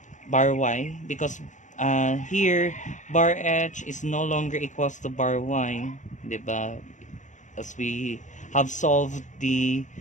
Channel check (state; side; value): late; right; 0.36 ms